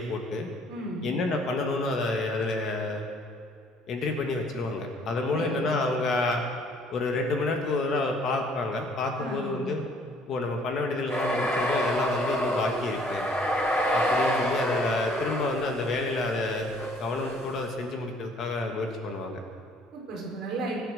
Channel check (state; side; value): normal; both; correlation 0.59